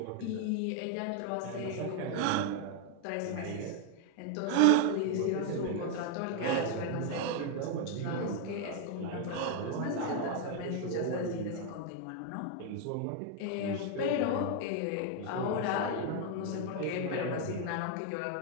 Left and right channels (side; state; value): both; different; correlation 0.01